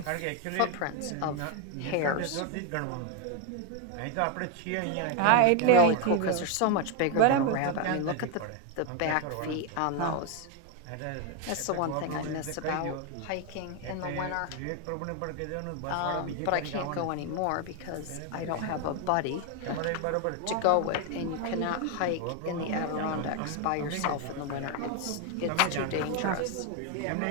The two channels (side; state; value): both; different; correlation 0.01